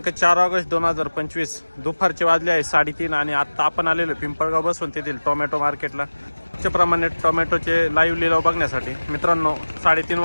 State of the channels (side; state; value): both; inverted; correlation -1.00